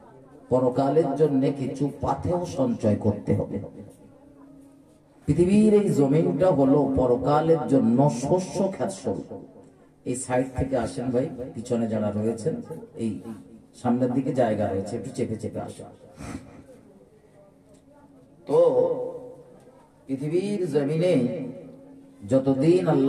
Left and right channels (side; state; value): both; identical; correlation 1.00